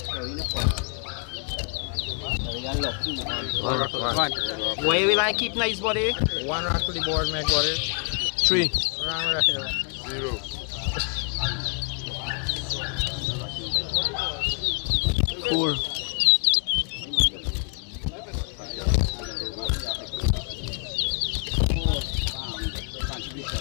One. Where will I keep nice body? One rack to the board, make body. 3. 0. 4.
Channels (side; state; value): right; quieter; 38.0 dB